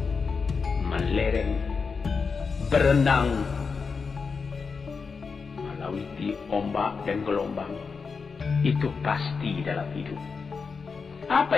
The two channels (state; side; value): quieter; right; 5.2 dB